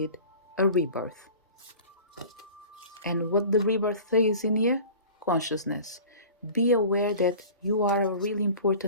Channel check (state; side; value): inverted; both; correlation -0.40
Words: a rebirth. And what the rebirth is in here? Consciousness. Be aware that you are a really